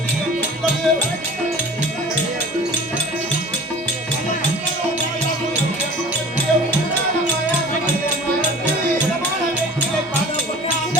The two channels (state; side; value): normal; both; correlation 0.43